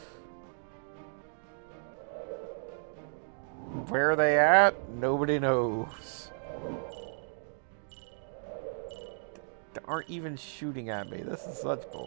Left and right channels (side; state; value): left; silent; digital silence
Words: Where are they at? Nobody knows. They aren't even shooting at me. This is such